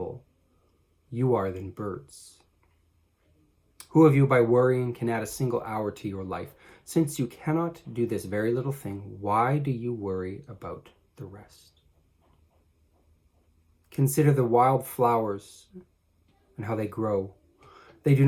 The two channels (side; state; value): both; identical; correlation 1.00